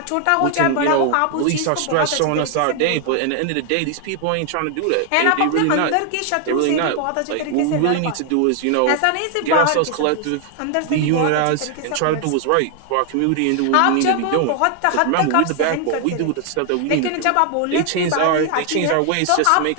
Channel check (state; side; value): different; both; correlation 0.00